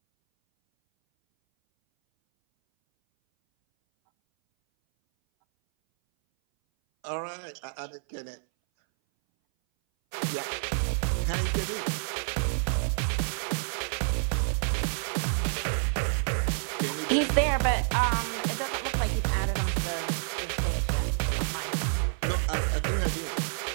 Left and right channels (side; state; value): left; silent; 59 dB below the other